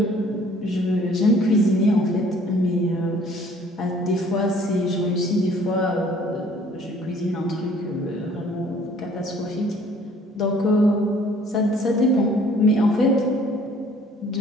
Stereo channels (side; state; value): both; normal; correlation 0.56